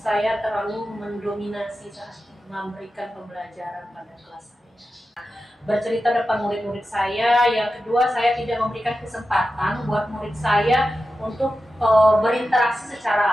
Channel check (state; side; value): normal; both; correlation 0.92